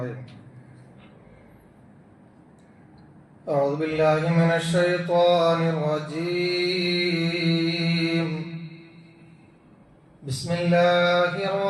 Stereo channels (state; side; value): identical; both; correlation 1.00